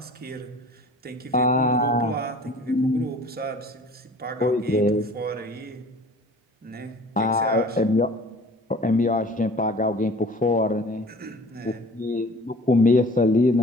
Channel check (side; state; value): both; normal; correlation 0.47